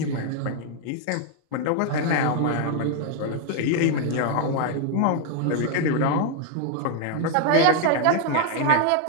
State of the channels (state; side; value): different; both; correlation 0.00